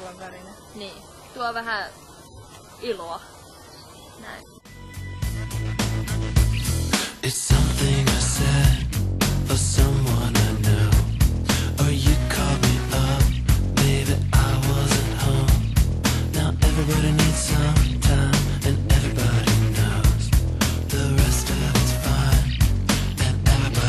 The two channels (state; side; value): identical; both; correlation 1.00